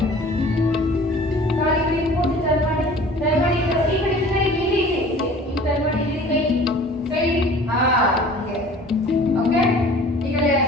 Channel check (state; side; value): normal; both; correlation 0.46